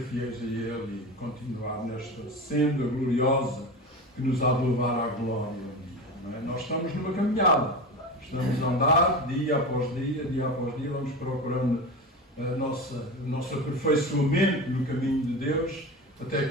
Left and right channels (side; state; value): both; normal; correlation 0.26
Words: fiéis a Ele e continuar nesta senda gloriosa que nos há de levar à glória. Não é? Nós estamos numa caminhada, estamos a andar dia após dia, vamos procurando o nosso aperfeiçoamento no caminho de Deus, até